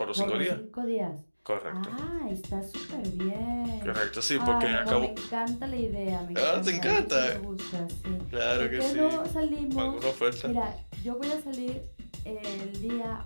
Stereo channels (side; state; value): both; inverted; correlation -1.00